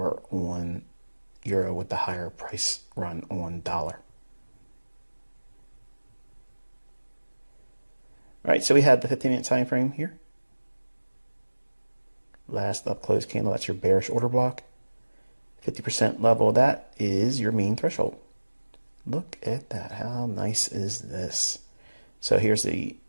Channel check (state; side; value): inverted; both; correlation -1.00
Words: on euro with the higher price run on dollar. All right, so we had the 15-minute time frame here. Last up close candle, that's your bearish order block. 50% level of that is your mean threshold. Look at that. How nice is this? So here's the